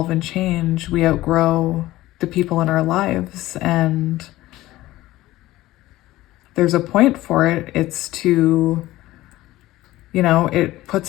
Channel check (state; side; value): quieter; right; 16.7 dB